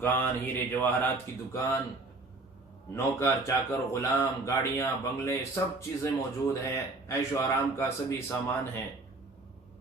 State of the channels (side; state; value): left; quieter; 3.3 dB